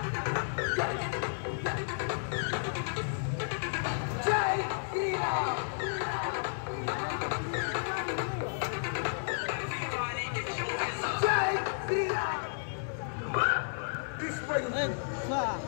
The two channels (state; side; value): silent; right; digital silence